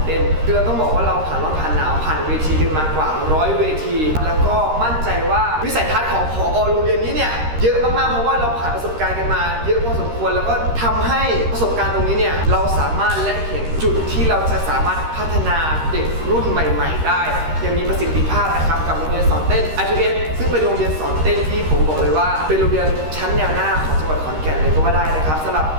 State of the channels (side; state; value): left; late; 13 ms